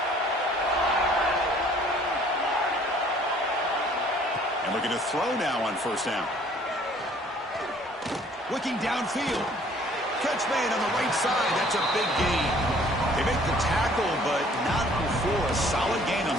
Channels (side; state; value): both; normal; correlation 0.57